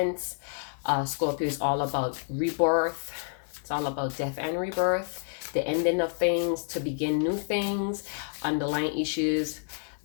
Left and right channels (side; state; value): right; silent; 59 dB below the other